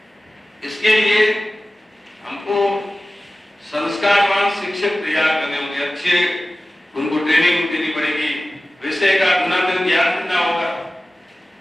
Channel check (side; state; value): both; normal; correlation 0.96